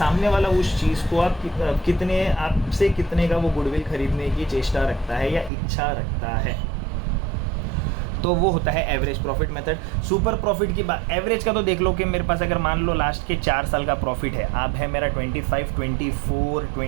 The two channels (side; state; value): left; drops out; at 5.5 s